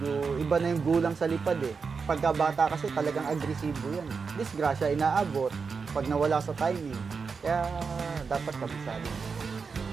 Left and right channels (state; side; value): quieter; left; 5.2 dB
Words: iba na yung gulang sa lipad eh. Pagka bata kasi talagang agresibo yan. Disgrasya, inaabot pag nawala sa timing. Kaya dapat kabisado.